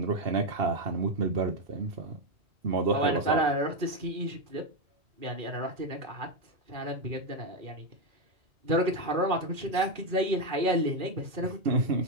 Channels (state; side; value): late; left; 2.4 ms